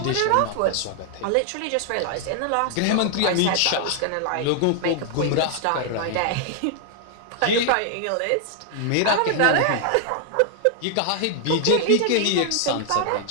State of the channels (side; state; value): both; different; correlation 0.00